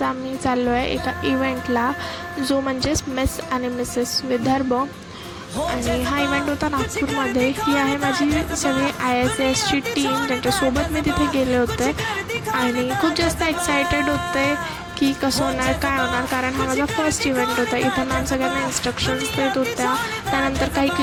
आम्ही चाललो आहे एका इव्हेंटला, जो म्हणजेच मिस आणि मिसेस विदर्भ. आणि हा इव्हेंट होता नागपूरमध्ये. ही आहे माझी सगळी ISASची टीम, ज्यांच्यासोबत मी तिथे गेले होते. आणि खूप जास्त एक्सायटेड होते की कसं होणार, काय होणार, कारण हा माझा फर्स्ट इव्हेंट होता. इथं मॅम सगळ्यांना इन्स्ट्रक्शन्स देत होत्या. त्यानंतर काही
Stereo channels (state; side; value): identical; both; correlation 1.00